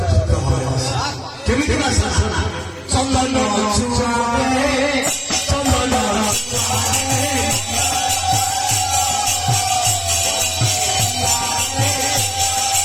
কেমিতি ভাষা চন্দন চুয়াবে চন্দন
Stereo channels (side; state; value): both; identical; correlation 1.00